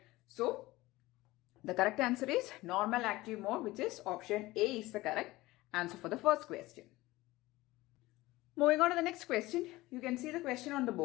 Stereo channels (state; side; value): quieter; right; 19.0 dB